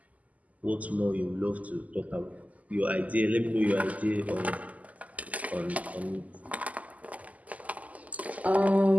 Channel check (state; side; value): late; left; 0.075 ms